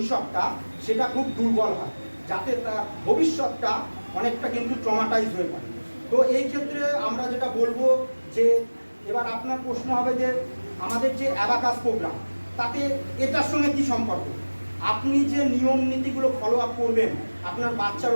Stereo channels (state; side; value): inverted; both; correlation -1.00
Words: সেটা খুব দুর্বল হয়, যাতে তার ভবিষ্যৎটা অনেকটা কিন্তু ট্রমাটাইজ হয়ে পড়ে। তো এই ক্ষেত্রে আমরা যেটা বলবো যে, এবার আপনার প্রশ্ন হবে যে আমাদের যে অ্যাবাকাস প্রোগ্রাম, তাতে এটার সঙ্গে কি সম্পর্ক? আপনি যে নিয়ম নীতিগুলো ফলো আপ করবেন আপনার বাচ্চার